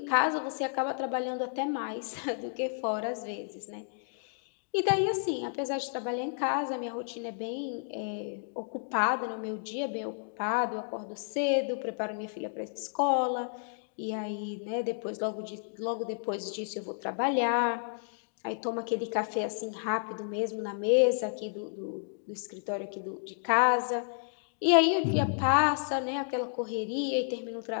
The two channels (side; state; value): right; silent; digital silence